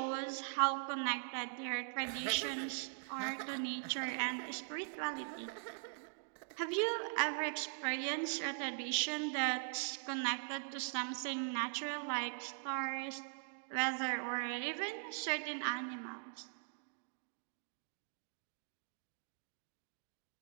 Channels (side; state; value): left; silent; digital silence